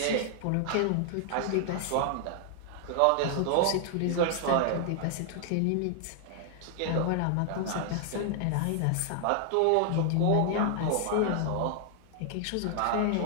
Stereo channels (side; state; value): both; different; correlation 0.00